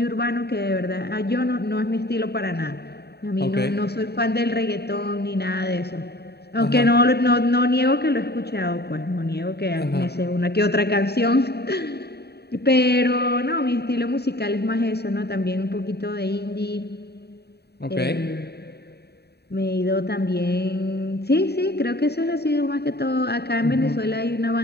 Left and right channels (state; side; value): late; right; 0.48 ms